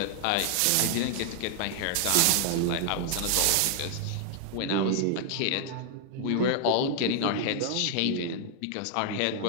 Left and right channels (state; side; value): different; both; correlation 0.00